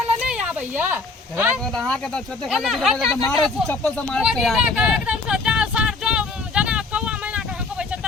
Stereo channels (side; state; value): right; quieter; 3.8 dB